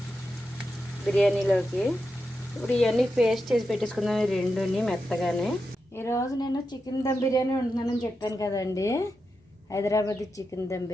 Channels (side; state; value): both; normal; correlation 0.88